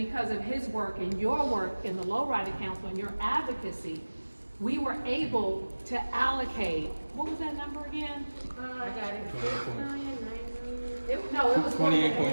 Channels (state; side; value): inverted; both; correlation -1.00